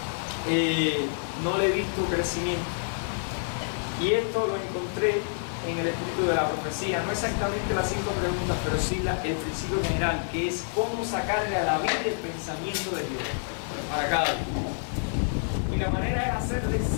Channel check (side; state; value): right; silent; digital silence